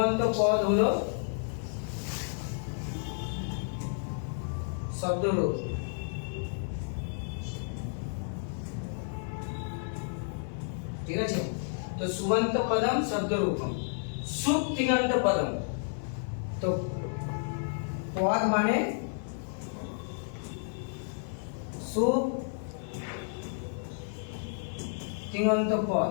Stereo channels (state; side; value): silent; right; 57 dB below the other